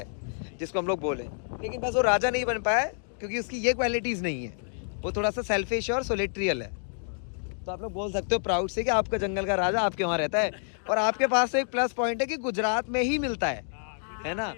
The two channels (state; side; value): silent; right; digital silence